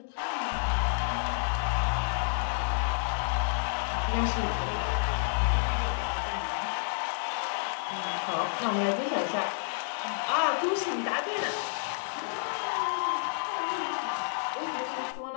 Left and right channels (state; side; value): silent; right; digital silence